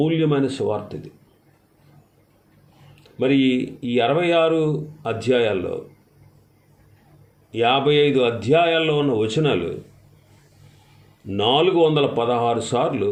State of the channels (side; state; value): both; identical; correlation 1.00